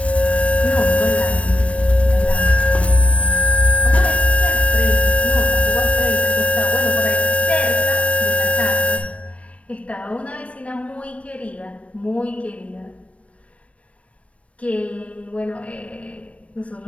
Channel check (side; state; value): right; late; 0.063 ms